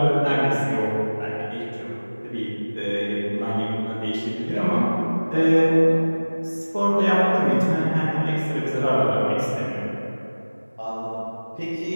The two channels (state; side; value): inverted; both; correlation -1.00